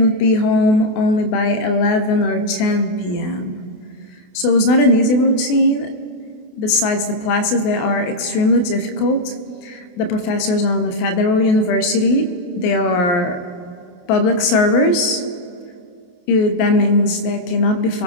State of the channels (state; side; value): late; right; 28 ms